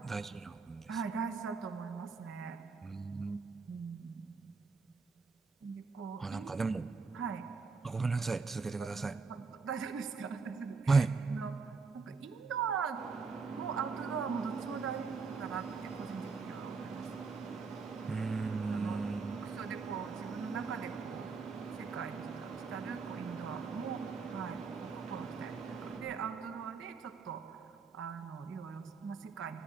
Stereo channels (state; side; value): quieter; left; 4.7 dB